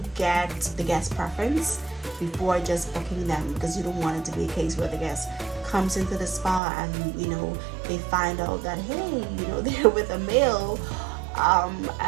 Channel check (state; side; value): drops out; left; at 6.6 s